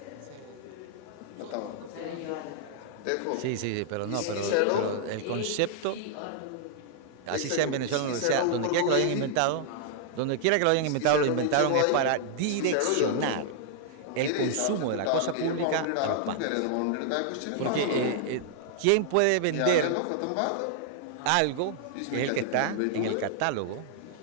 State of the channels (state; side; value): different; both; correlation -0.01